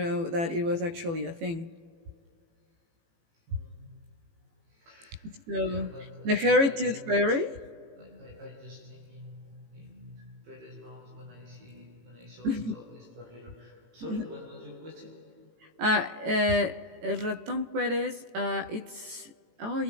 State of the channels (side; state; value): left; late; 18 ms